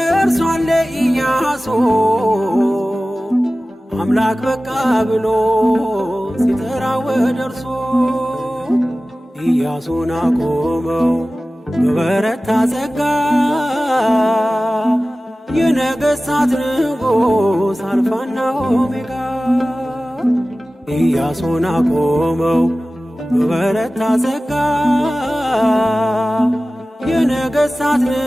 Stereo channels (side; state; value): both; normal; correlation 0.96